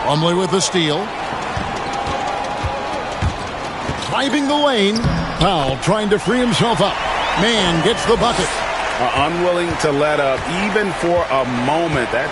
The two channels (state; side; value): identical; both; correlation 1.00